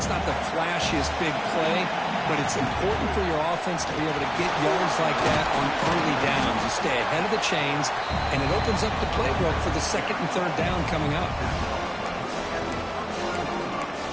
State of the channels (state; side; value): identical; both; correlation 1.00